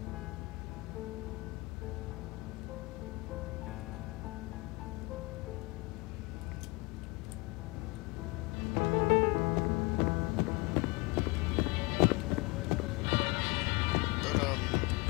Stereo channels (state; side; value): quieter; right; 25.3 dB